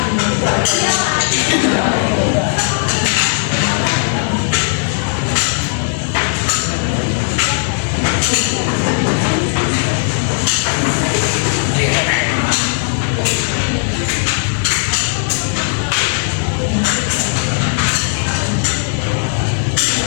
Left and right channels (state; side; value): silent; right; 66 dB below the other